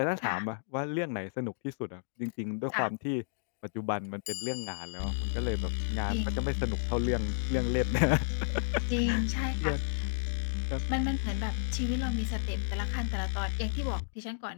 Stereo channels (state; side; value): silent; right; digital silence